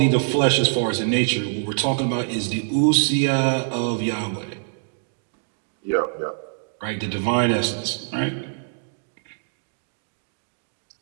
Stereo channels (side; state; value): left; silent; digital silence